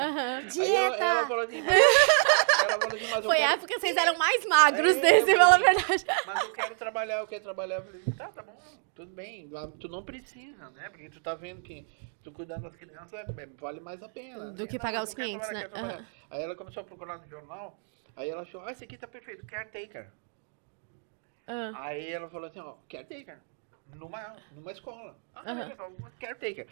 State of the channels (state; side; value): silent; left; 58 dB below the other